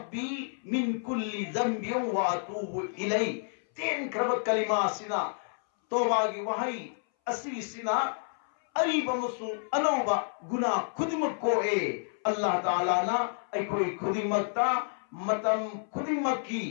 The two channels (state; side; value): silent; right; 58 dB below the other